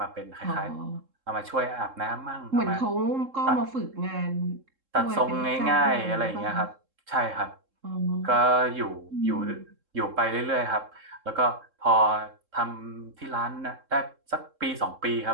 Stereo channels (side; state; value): left; late; 3.7 ms